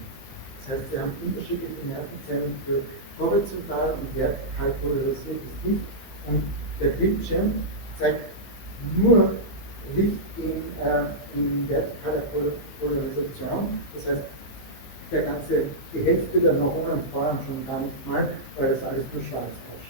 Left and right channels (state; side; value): late; right; 15 ms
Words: Das heißt, Sie haben unterschiedliche Nervenzellen für horizontal und vertikal polarisiertes Licht und der Bildschirm zeigt nur Licht in vertikaler Polarisation, das heißt, die Hälfte der Neuronen feuern schon gar nicht mal, weil das alles nur schwarz